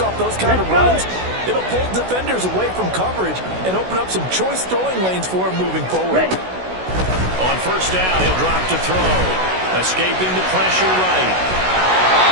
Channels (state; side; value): late; left; 16 ms